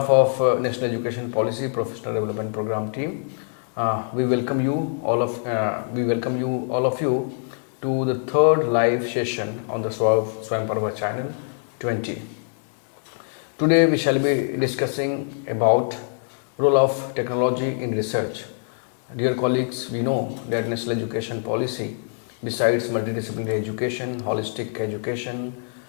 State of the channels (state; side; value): silent; right; digital silence